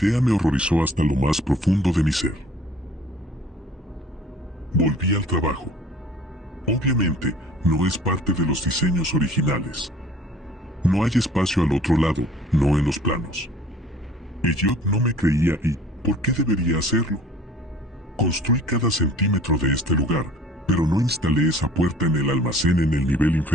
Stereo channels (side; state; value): both; normal; correlation 0.50